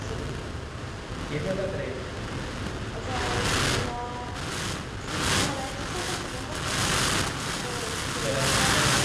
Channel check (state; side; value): identical; both; correlation 1.00